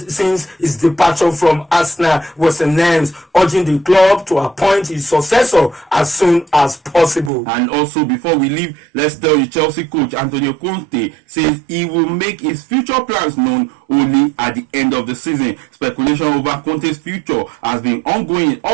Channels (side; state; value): left; drops out; at 7.3 s